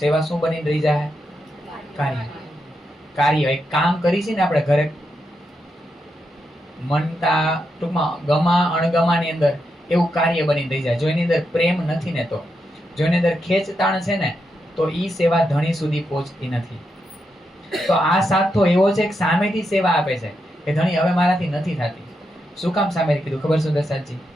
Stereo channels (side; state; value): both; normal; correlation 0.84